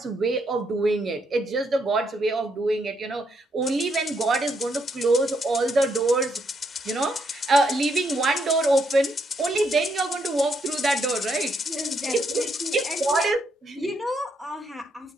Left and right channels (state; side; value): normal; both; correlation 0.76